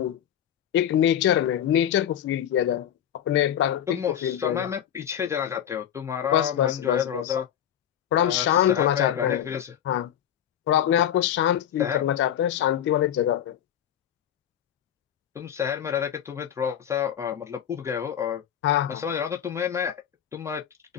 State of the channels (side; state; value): right; quieter; 10.0 dB